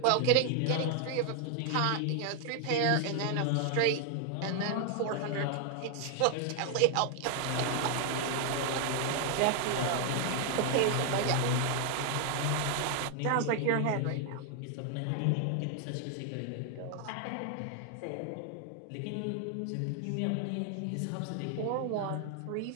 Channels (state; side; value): different; both; correlation 0.00